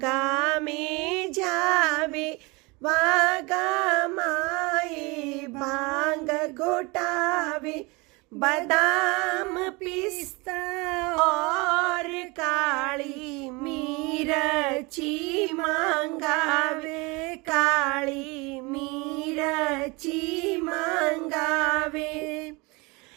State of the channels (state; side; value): quieter; left; 26.5 dB